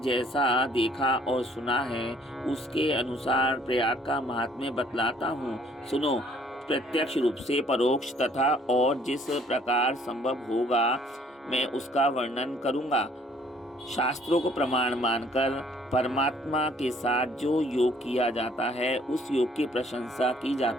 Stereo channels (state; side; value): normal; both; correlation 0.60